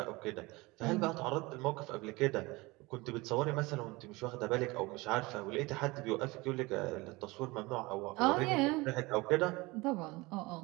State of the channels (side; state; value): left; quieter; 23.0 dB